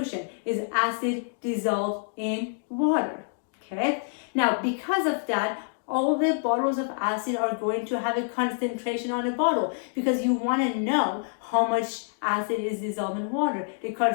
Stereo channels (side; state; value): right; silent; digital silence